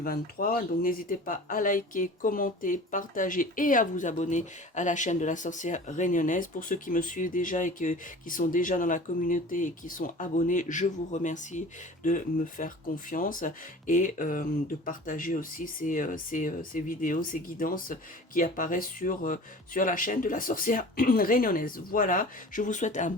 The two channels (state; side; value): normal; both; correlation 0.41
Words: Donc n'hésitez pas à liker, commenter, partager et à vous abonner à la chaîne de la sorcière réunionnaise. Pour ceux qui me suivent déjà et qui sont déjà dans la communauté et qui sont abonnés, je vous remercie de me faire confiance et de partager aussi ces vidéos, ces guidances qui apparaissent sur la chaîne de la sorcière réunionnaise. Voilà, je vous souhaite un